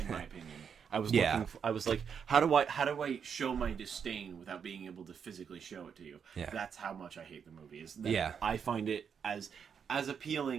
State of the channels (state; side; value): quieter; left; 7.1 dB